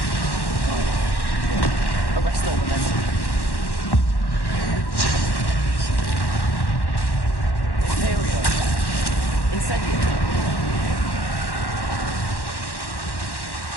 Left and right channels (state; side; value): late; right; 1.1 ms